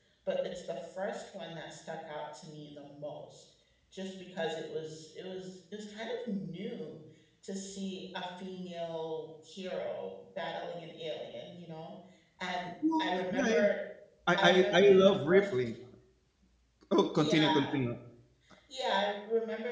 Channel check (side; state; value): both; identical; correlation 1.00